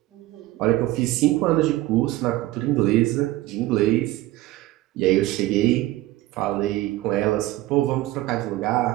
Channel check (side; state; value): left; quieter; 17.1 dB